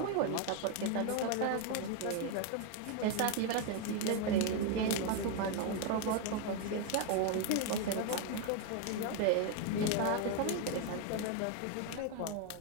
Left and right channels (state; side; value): different; both; correlation 0.01